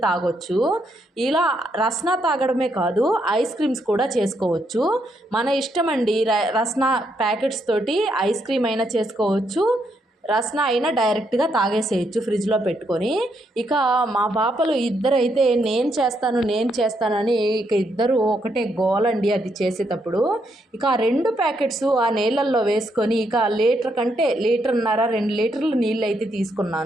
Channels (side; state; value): both; normal; correlation 0.77